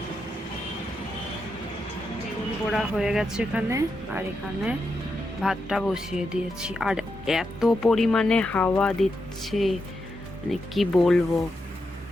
বেগুন পোড়া হয়ে গেছে এখানে, আর এখানে ভাতটা বসিয়ে দিয়েছি। আর এত পরিমাণে হাওয়া দিচ্ছে, মানে কি বলবো,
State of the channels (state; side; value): normal; both; correlation 0.85